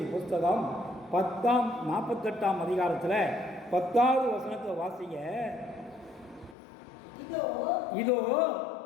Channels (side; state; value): right; drops out; at 6.6 s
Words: புத்தகம் 48ஆம் அதிகாரத்தில் 10வது வசனத்தை வாசிங்க. இதோ